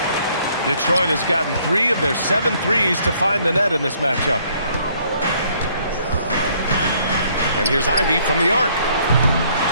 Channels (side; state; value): both; inverted; correlation -0.64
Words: Detroit has gotten 3 of their 7 threes to find the net in this matchup. And here's Ivy from the arc.